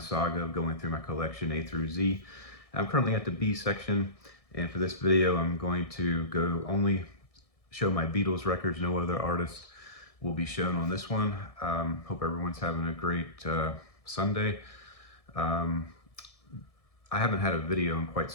of going through my collection A through Z. I'm currently at the B section, and for this video, I'm going to only show my Beatles records. No other artists will be shown on this one. Hope everyone's having a great Sunday. I haven't had a video in quite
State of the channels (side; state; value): right; late; 1.6 ms